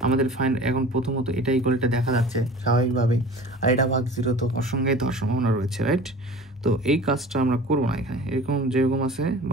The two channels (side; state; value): both; normal; correlation 0.41